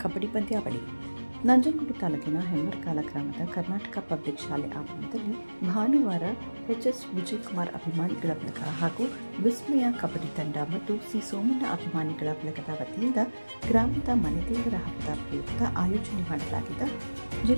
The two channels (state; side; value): inverted; both; correlation -1.00